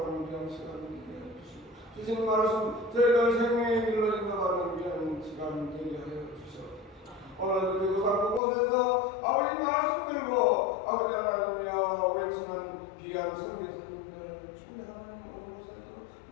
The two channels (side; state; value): right; drops out; at 8.4 s